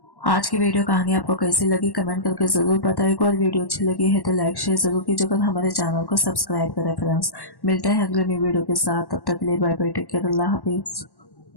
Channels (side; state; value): right; late; 1.1 ms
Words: आज की वीडियो कहानी आपको कैसी लगी कमेंट करके जरूर बताइएगा और वीडियो अच्छी लगी है तो लाइक शेयर जरूर कीजिएगा और हमारे चैनल को सब्सक्राइब करें फ्रेंड्स। मिलते हैं अगले न्यू वीडियो के साथ, तब तक के लिए बाय बाय, टेक केयर, अल्लाह हाफिज।